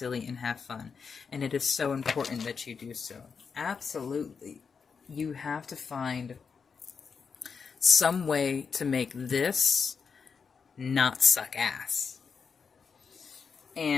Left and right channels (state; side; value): quieter; right; 5.8 dB